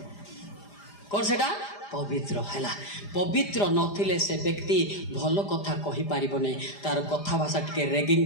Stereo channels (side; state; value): right; late; 4.9 ms